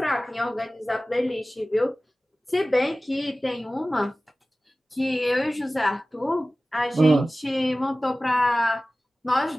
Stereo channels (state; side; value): normal; both; correlation 0.97